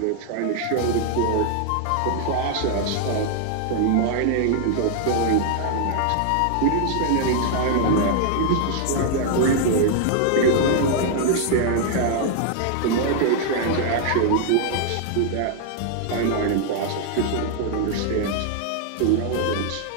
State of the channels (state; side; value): different; both; correlation 0.00